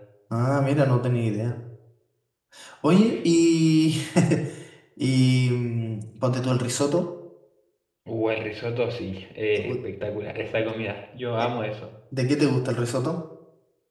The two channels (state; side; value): identical; both; correlation 1.00